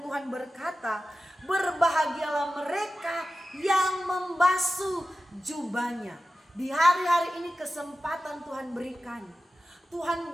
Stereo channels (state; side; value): normal; both; correlation 0.94